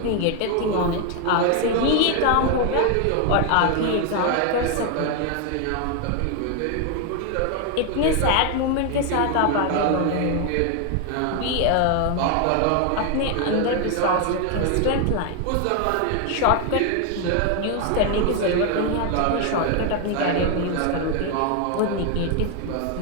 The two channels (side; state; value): both; different; correlation 0.01